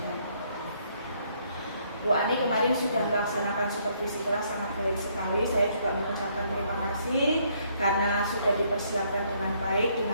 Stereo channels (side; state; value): both; inverted; correlation -0.68